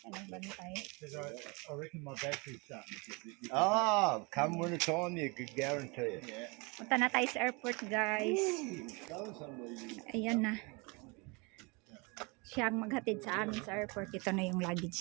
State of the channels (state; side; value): quieter; left; 29.1 dB